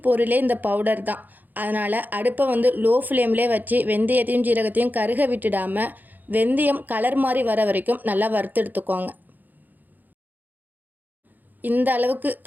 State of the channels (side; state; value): left; late; 0.085 ms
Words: பொருளே இந்த பவுடர் தான். அதனால் அடுப்பை லோ ஃப்ளேம்லேயே வச்சு வெந்தயத்தையும் ஜீரகத்தையும் கருக விட்டுடாமல் வெந்தயம் கலர் மாதிரி வர வரைக்கும் நல்லா வறுத்து எடுத்துக்கோங்க. இந்த அளவுக்கு